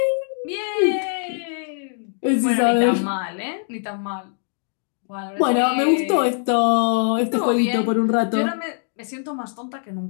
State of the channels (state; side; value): silent; right; digital silence